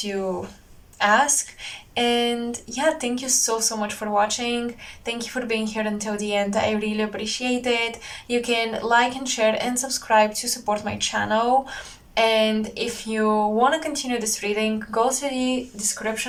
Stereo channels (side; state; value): both; identical; correlation 1.00